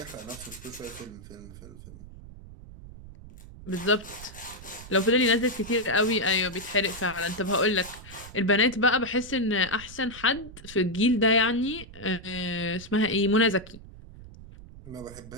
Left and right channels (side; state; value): right; noise; rumble, 17 dB below the sound